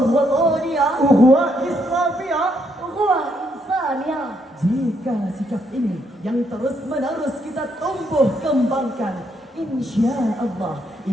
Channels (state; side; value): normal; both; correlation 0.75